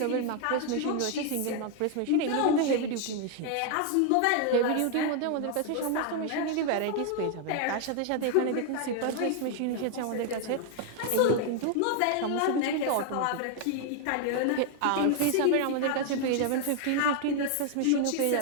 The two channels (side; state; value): both; different; correlation 0.00